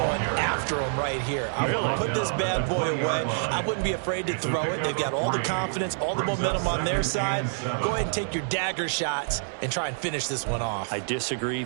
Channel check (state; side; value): silent; left; digital silence